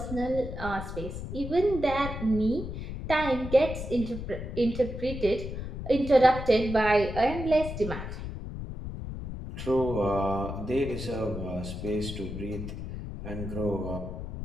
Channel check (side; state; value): left; noise; rumble, 7 dB below the sound